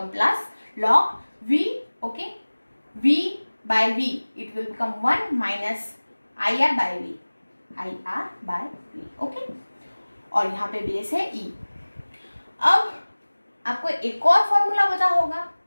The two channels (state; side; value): inverted; both; correlation -1.00